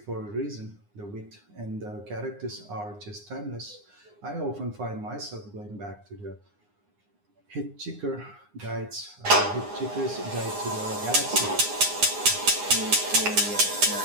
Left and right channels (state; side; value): late; left; 9.8 ms